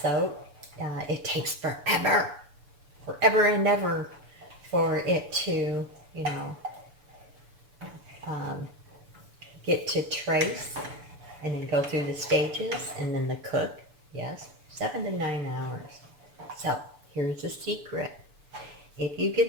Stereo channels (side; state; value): left; late; 6.9 ms